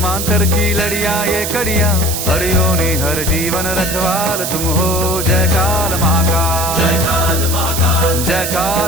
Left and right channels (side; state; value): right; noise; hiss, 3 dB below the sound